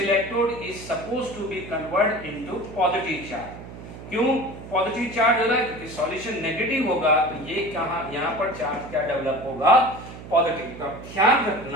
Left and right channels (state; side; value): noise; right; hum, 14 dB below the sound